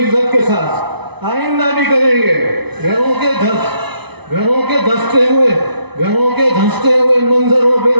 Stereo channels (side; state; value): left; late; 0.99 ms